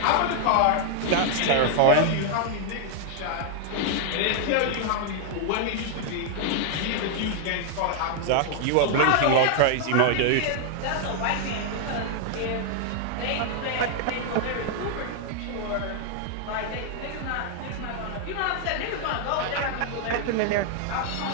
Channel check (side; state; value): both; different; correlation 0.00